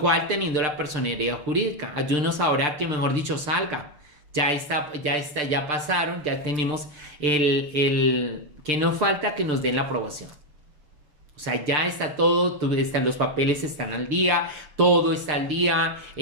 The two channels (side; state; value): left; late; 6.7 ms